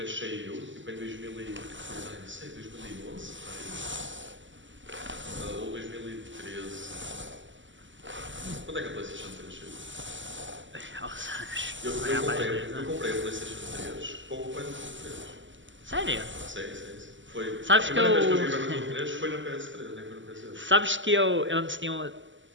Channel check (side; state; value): left; late; 0.55 ms